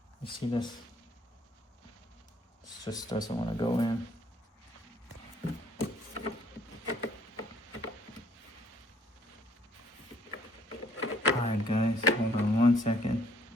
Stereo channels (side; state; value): both; normal; correlation 0.63